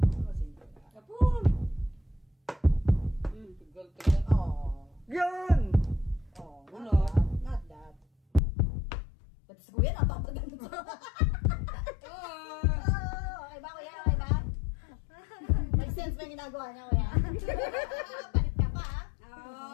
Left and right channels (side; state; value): right; drops out; at 8.4 s